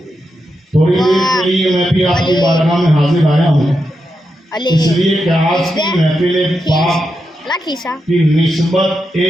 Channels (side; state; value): both; normal; correlation 0.86